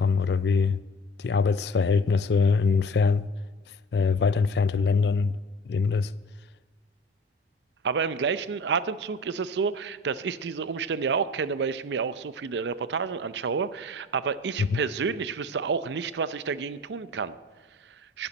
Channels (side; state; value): both; normal; correlation 0.43